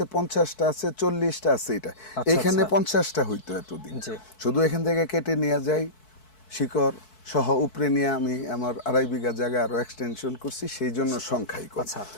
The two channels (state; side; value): late; right; 4.6 ms